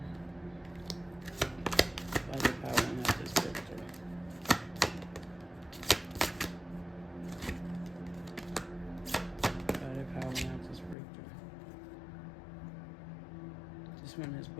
Let it power and have this breakthrough. Let it power and have this breakthrough. this one is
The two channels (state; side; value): drops out; right; at 11.0 s